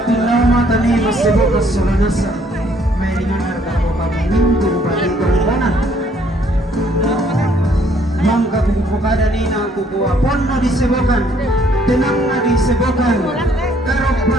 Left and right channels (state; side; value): normal; both; correlation 0.64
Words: nama tani masebut kesolanasa. May ringanar kako kaminggu bagi korbanan. Mangka bukukada nina kukuha ponno disebokan. Tenang na disebokan. Karok pa